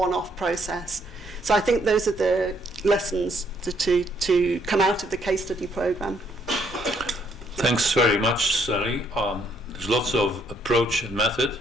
process. So I think those are the lessons to come out of the case study program. Thanks very much, Sally. There's lots of approach and method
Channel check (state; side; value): normal; both; correlation 0.69